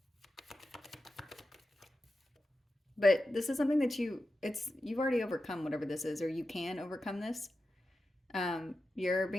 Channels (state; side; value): normal; both; correlation 0.91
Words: But this is something that you've already overcome whatever this is, or you can overcome this. You're